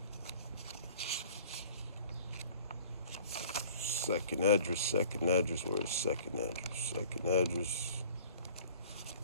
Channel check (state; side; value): inverted; both; correlation -0.49